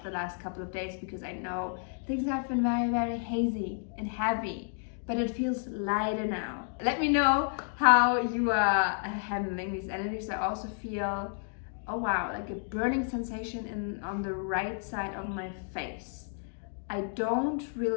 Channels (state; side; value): silent; right; 57 dB below the other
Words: the last couple of days, because I know things have been very, very hazy and heavy. But it feels lighter now. Let me know how you are handling these energies. I also feel, oh wow, like a burning sensation on the right side of my face. I don't